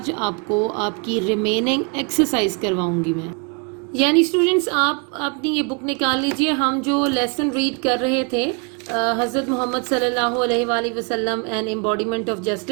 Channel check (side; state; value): left; quieter; 35.4 dB